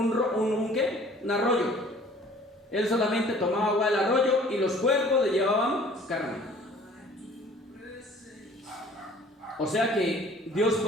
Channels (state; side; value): normal; both; correlation 0.51